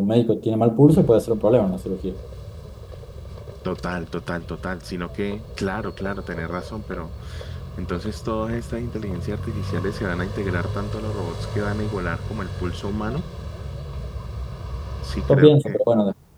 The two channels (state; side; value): identical; both; correlation 1.00